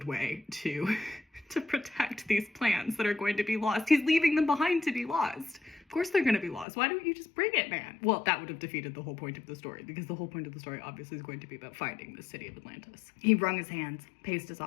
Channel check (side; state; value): right; drops out; at 6.7 s